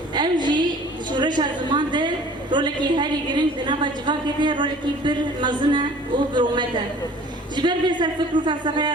ام جی شورش زمان ده رولکی هری گرین دنبا جوا کده رولکی پر مزنه و برومته جبر به سر فکر و فلسفه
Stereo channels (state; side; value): normal; both; correlation 0.49